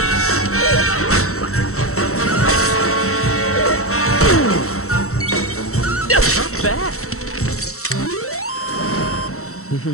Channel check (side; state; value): right; late; 0.64 ms